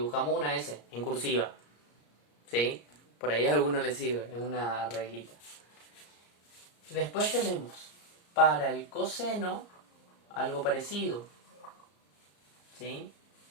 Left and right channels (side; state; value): right; late; 34 ms